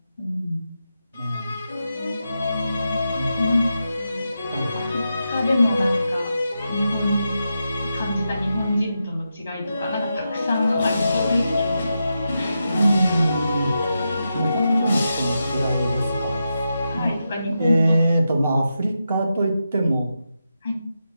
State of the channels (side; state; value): both; inverted; correlation -0.87